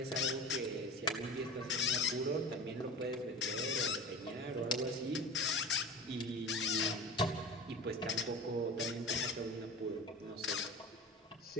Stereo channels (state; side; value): normal; both; correlation 0.32